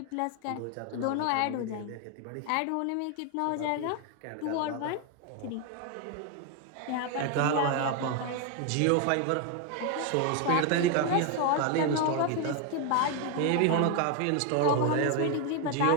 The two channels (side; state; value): both; different; correlation 0.01